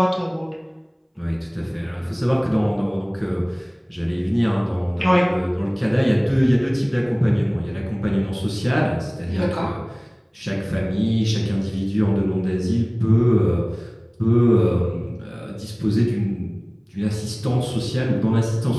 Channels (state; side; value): identical; both; correlation 1.00